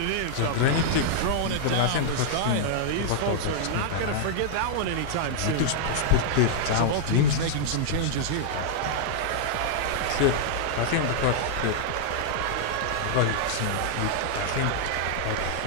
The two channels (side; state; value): both; different; correlation -0.01